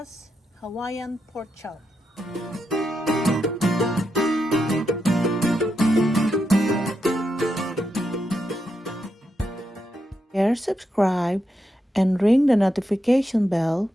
Hawaiian pork chop. Share, subscribe, and ring the notification bell.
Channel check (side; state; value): both; normal; correlation 0.84